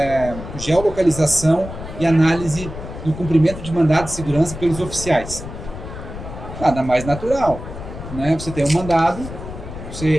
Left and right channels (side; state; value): left; noise; rumble, 10 dB below the sound